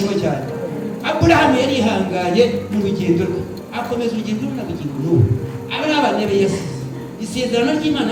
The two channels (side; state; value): both; identical; correlation 1.00